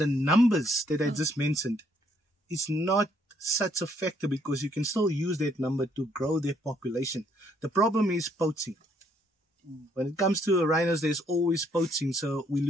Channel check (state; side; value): normal; both; correlation 0.69